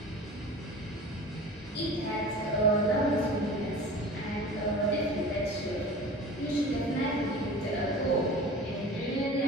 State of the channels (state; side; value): normal; both; correlation 0.38